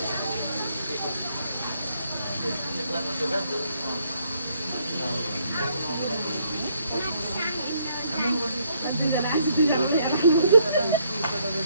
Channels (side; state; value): both; inverted; correlation -0.70